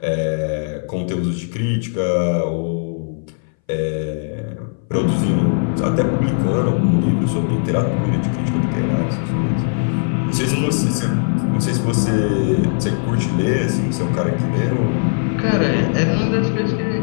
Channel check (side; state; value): right; silent; 62 dB below the other